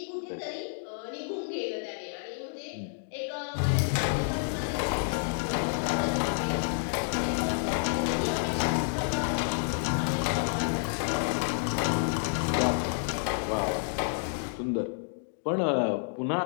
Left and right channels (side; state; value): right; silent; digital silence